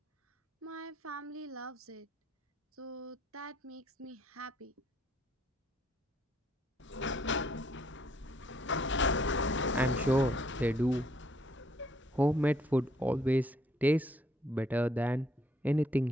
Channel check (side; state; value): both; normal; correlation 0.68